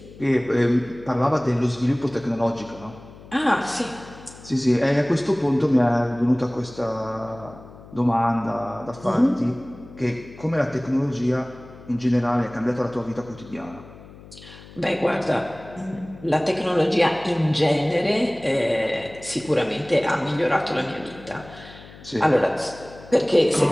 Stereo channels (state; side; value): noise; left; hum, 19 dB below the sound